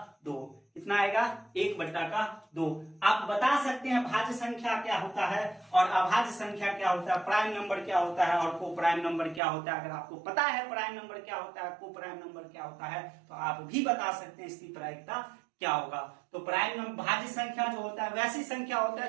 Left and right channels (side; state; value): left; drops out; at 9.4 s